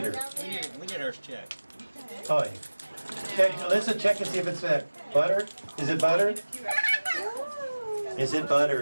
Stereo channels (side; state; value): both; inverted; correlation -1.00